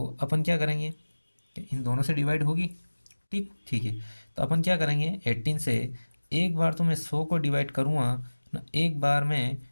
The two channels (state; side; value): inverted; both; correlation -1.00